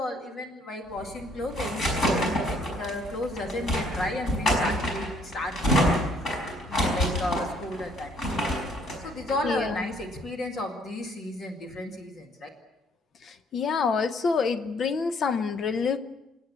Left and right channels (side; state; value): both; normal; correlation 0.63